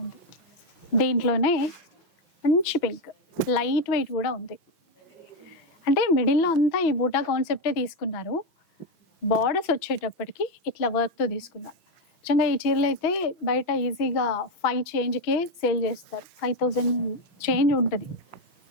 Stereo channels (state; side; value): late; right; 6.1 ms